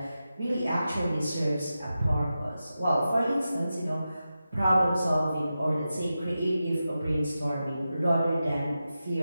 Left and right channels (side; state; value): both; inverted; correlation -0.91